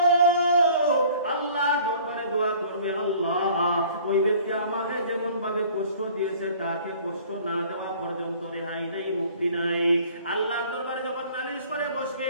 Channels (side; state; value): both; inverted; correlation -0.51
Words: আল্লাহ দরবারে দোয়া করবে, আল্লাহ ওই ব্যক্তি আমাকে যেমন ভাবে কষ্ট দিয়েছে তাকে কষ্ট না দেওয়া পর্যন্ত রেহাই নাই, মুক্তি নাই। আল্লাহর দরবারে যখন নালিশ করে বসবে,